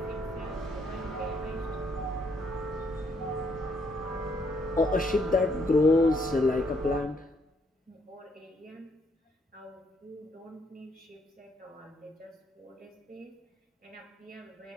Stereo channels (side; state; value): both; normal; correlation 0.71